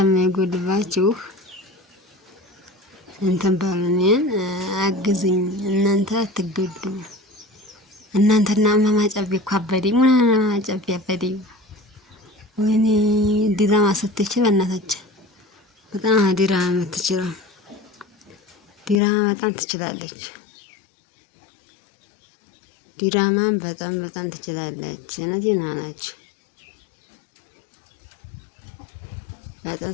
እንትን በሉ እኔን አግዙኝ። እናንተ አትጎዱም። እናንተና እማማ ጨቤ እኮ አበደኝ። እማማ ጨቤ አበደኝ። ወይኔ ዲራማ ስትችል በእናታችን በጣም ዲራማ የምትችለው ዲራማ በጣም ትችላለች። ዲራማን በጣም ትችላለች። እውነቴን ነው አላችሁ። በጣም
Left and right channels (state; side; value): drops out; right; at 19.0 s